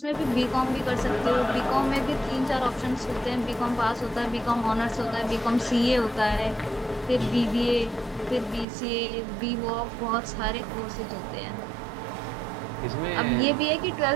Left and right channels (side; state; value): left; drops out; at 8.7 s